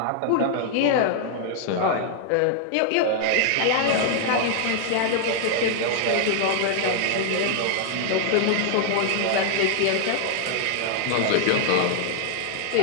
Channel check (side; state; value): both; different; correlation -0.01